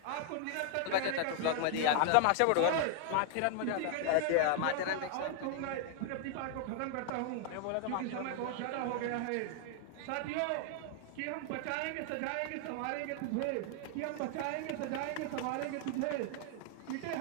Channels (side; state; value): both; different; correlation 0.00